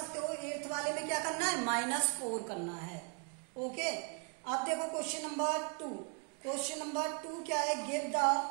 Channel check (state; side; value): quieter; left; 37.8 dB